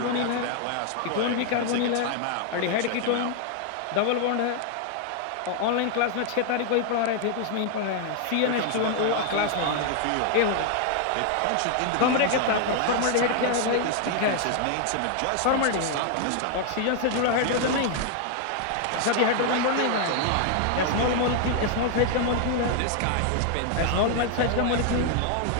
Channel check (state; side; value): different; both; correlation 0.00